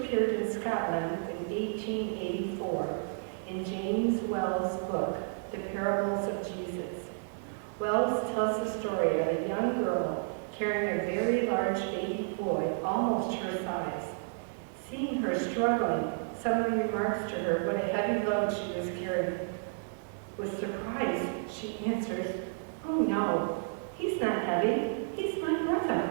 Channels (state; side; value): silent; left; digital silence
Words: in Scotland in 1884 in James Wells' book, The Parables of Jesus. Wells tells the story of a young girl carrying a very large baby boy, almost her size. Seeing her struggling, someone remarks to her what a heavy load she was carrying. With surprise, she answers, "Oh no, he's not heavy, he's my brother."